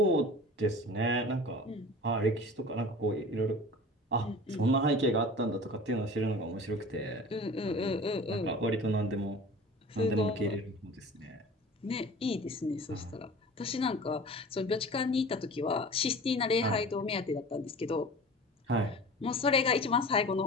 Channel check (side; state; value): both; normal; correlation 0.39